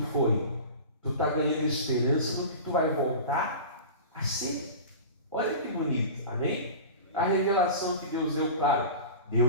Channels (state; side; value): inverted; both; correlation -0.33